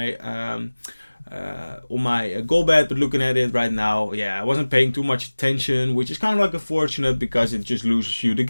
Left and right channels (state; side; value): inverted; both; correlation -1.00